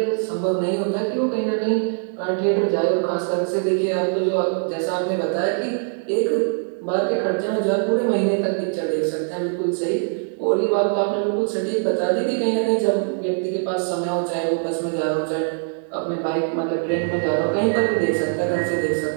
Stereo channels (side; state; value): left; silent; 64 dB below the other